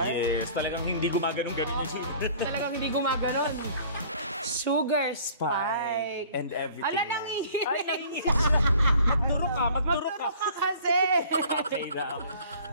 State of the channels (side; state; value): both; inverted; correlation -0.50